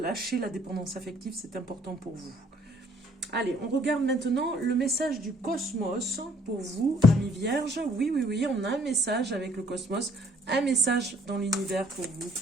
la dépendance affective, c'est important pour vous. Allez, on regarde maintenant le message du cosmos pour vous, amis vierges. Oui, oui, oui, on a un message avec le cosmos, un message dans l'univers pour vous.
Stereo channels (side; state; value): both; normal; correlation 0.62